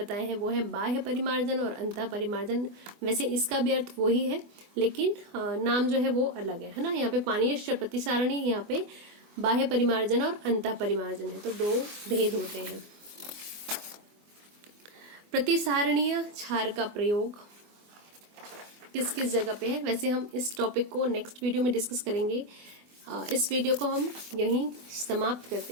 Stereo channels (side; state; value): left; late; 24 ms